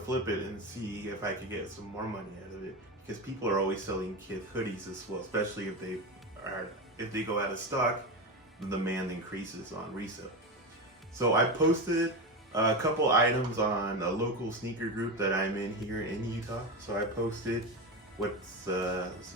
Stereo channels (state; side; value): normal; both; correlation 0.19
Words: flip it and see if I could get some more money out of it. Because people are always selling Kith hoodies as well, especially if they go out of stock, the demand increases on resale. So I posted a couple items on a local sneaker group that I'm in here in Utah. So I posted the